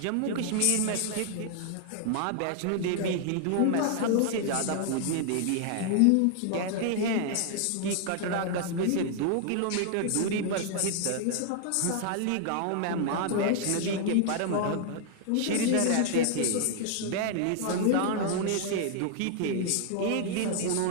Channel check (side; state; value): both; different; correlation -0.01